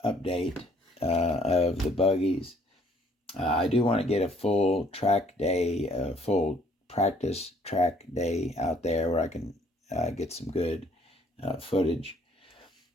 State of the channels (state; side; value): normal; both; correlation 0.61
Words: update of the buggies. I do want to get a full track day, full practice track day out there where I can get some good footage.